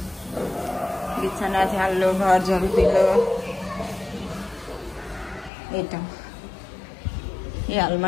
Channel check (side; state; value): right; drops out; at 5.5 s